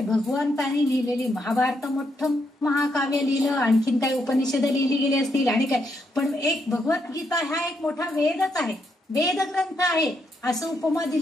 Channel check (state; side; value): normal; both; correlation 0.78